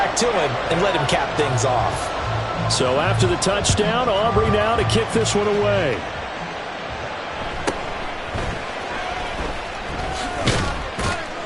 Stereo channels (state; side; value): identical; both; correlation 1.00